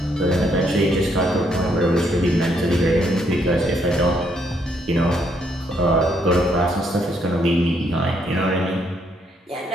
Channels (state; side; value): normal; both; correlation 0.72